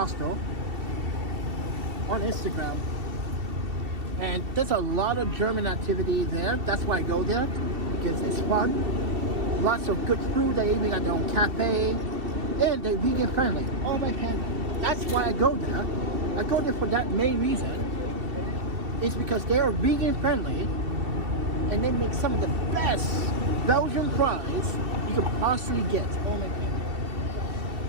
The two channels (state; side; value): late; left; 2.7 ms